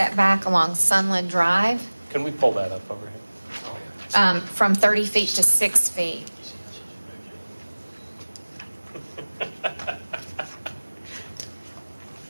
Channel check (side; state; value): both; inverted; correlation -1.00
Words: along Sunland Drive Can we pull that up over here? from 30 feet to 6 feet.